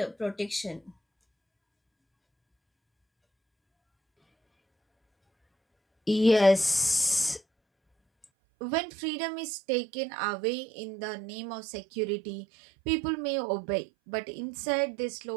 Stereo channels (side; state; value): left; drops out; at 8.2 s